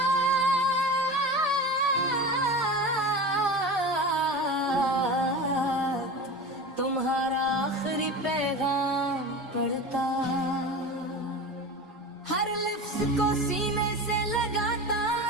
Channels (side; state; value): both; normal; correlation 0.31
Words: तुम्हारा आखिरी पैगाम पढ़ता, हर लफ्ज को सीने से लगाता